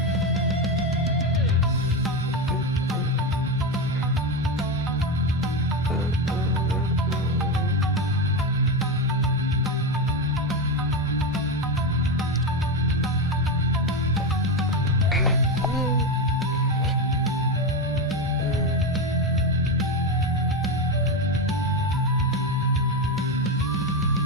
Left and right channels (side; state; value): both; normal; correlation 0.13